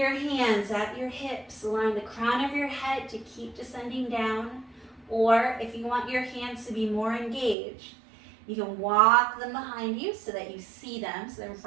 hands at your hips, allowing the crown of your head to keep descending down. Or if you want your hands to be more engaged, you can walk them behind you so that you see them, so they're in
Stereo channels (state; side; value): drops out; left; at 7.6 s